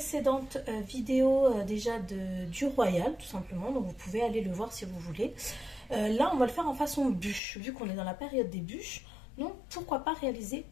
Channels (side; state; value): right; drops out; at 7.4 s